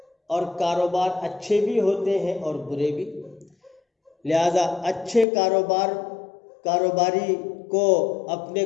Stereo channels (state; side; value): drops out; right; at 5.2 s